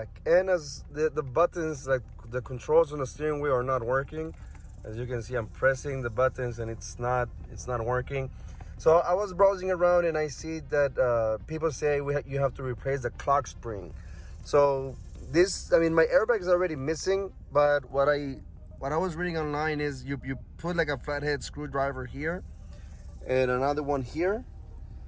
and as the buttons, like the controls on the steering wheel, are not working. As you can see, I'm pressing the buttons and it's not working. So I was browsing around and I see that people say you have to replace the clock spring. So my airbag is already missing, but what I was reading online is you put like a flathead screwdriver here and another one here,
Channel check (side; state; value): both; identical; correlation 1.00